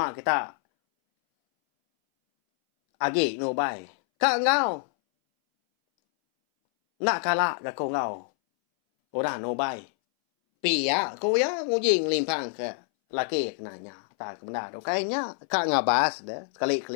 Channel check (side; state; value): right; silent; 60 dB below the other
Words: kita agi no bai. Ka ngau. Nak kala ga ko ngau. Ora no bai. Pia ko ya ngujing limpang ke laki kenanya. Ta ke benda do kayaknya ka ngabas dah.